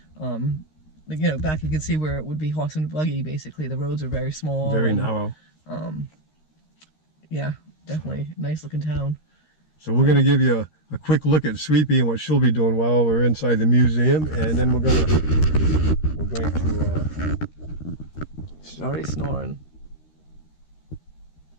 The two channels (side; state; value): right; late; 13 ms